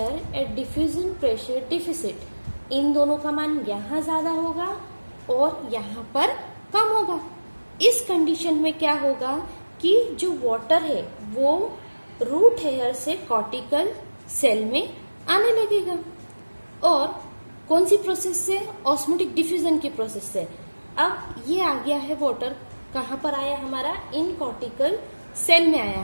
and diffusion pressure deficit, इन दोनों का मान यहाँ ज्यादा होगा और यहाँ पर कम होगा। इस कंडीशन में क्या होगा कि जो वाटर है वो रूट हेयर से कॉर्टिकल सेल में आने लगेगा, और कौन सी प्रोसेस से, ऑस्मोटिक डिफ्यूजन की प्रोसेस से। अब ये आ गया है वाटर, कहाँ पर आया हमारा, इन कॉर्टिकल सेल में आया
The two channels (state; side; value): inverted; both; correlation -1.00